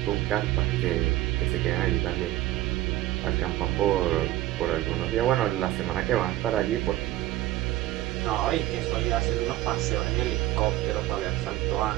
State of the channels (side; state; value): left; quieter; 15.7 dB